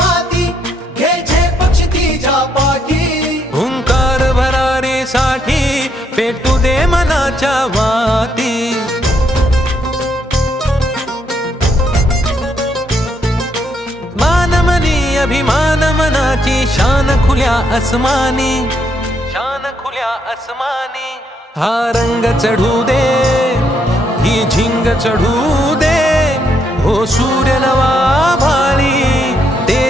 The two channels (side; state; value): both; normal; correlation 0.75